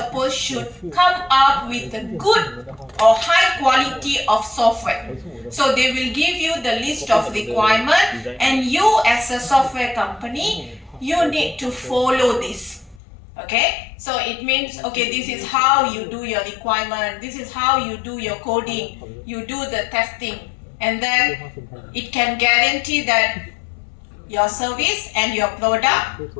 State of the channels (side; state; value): right; drops out; at 13.0 s